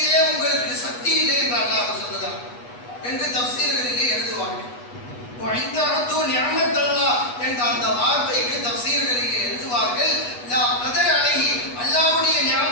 உங்களுக்கு சக்தி இல்லை என்று அல்லாஹ் சொல்லுகிறார் என்று தஃசீர்களிலே எழுதுவார்கள். என்ற அந்த வார்த்தைக்கு தஃசீர்களிலே எழுதுவார்கள், லா கதர அலைஹி, அல்லாஹ்வுடைய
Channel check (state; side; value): late; right; 8.2 ms